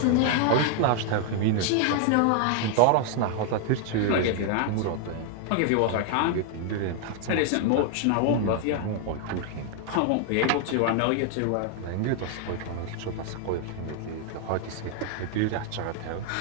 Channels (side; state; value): both; different; correlation 0.00